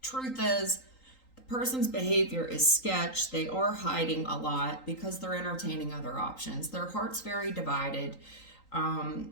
Truth is, the person's behavior is sketch. They are hiding a lot because they're entertaining other options. Their heart's very divided. To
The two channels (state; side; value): late; right; 3.8 ms